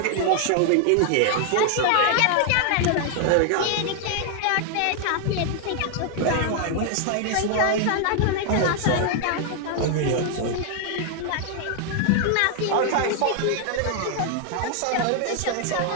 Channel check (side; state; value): both; different; correlation 0.00